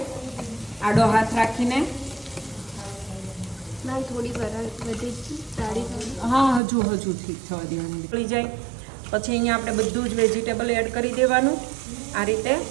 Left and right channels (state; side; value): drops out; left; at 6.6 s